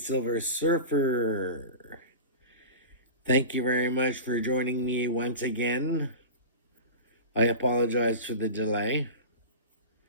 Surfer. Thank you very much for joining me once again. I apologize for the delay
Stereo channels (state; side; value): inverted; both; correlation -0.31